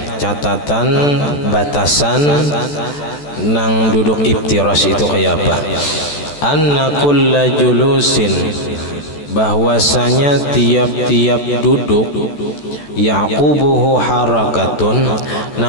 catatan batasan nang duduk iftiras itu kayak apa? Anna kulla julusin, bahwasanya tiap-tiap duduk yaqubuhu harakatun,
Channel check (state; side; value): late; right; 14 ms